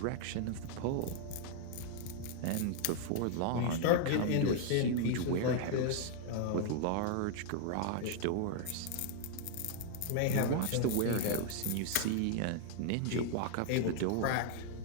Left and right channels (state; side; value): different; both; correlation 0.00